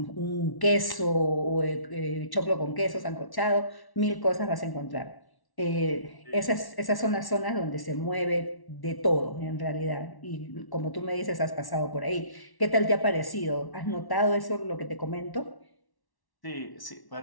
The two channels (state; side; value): late; right; 1.1 ms